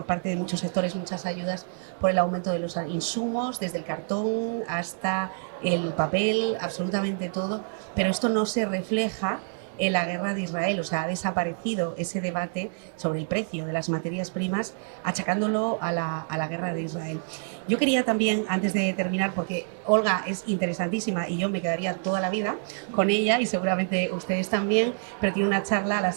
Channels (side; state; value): left; silent; digital silence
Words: parte de muchos sectores muchas ayudas por el aumento de los insumos, desde el cartón hasta el papel, absolutamente todo, pero esto no se refleja en la guerra de Israel. O sea, ha desaparecido ese debate sobre el precio de las materias primas, achacándolo a la guerra de Israel. Yo quería también, antes de terminar, porque Olga es interesantísima y yo me quedaría toda la vida con ella y seguramente ustedes también, pero tiene una charla a las